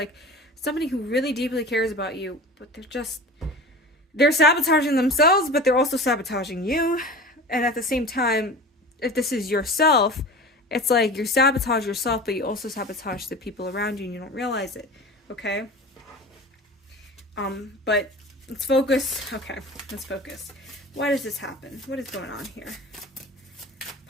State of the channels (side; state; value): both; normal; correlation 0.35